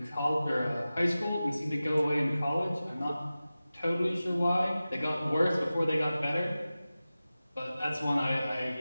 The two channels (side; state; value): both; inverted; correlation -0.95